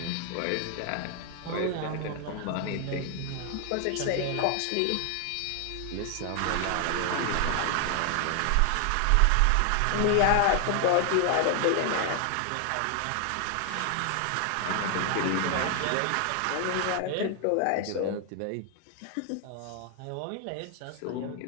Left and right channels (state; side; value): different; both; correlation 0.00